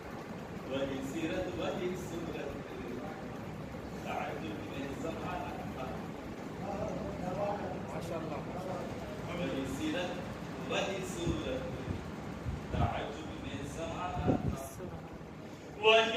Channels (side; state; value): both; identical; correlation 1.00